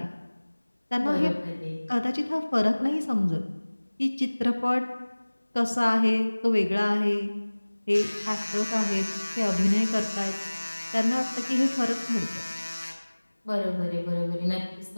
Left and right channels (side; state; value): both; inverted; correlation -1.00